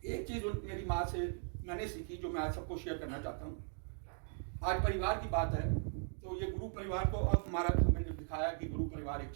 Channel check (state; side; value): silent; left; 52 dB below the other